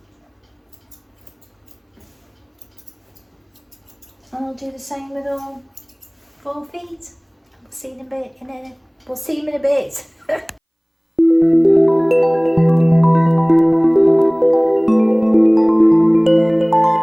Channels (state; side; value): identical; both; correlation 1.00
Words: And I'll do the same with all 4 feet. See you in a bit. We'll see you in a bit.